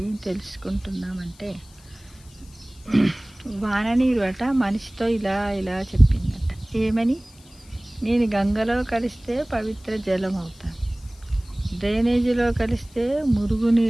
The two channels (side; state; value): left; noise; hiss, 26 dB below the sound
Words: ఏం తెలుసుకుంటున్నామంటే, వాననీరు అట మనిషితో ఇలా ఇలా చెప్పిందట. ఏమని? నేను గంగలో కలిస్తే పవిత్ర జలం అవుతాను, డ్రైనేజీలో కలిస్తే